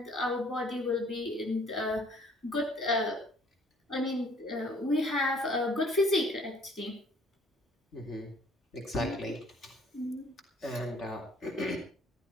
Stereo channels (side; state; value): both; normal; correlation 0.58